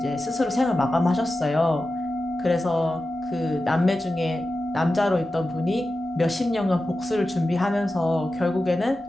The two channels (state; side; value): normal; both; correlation 0.93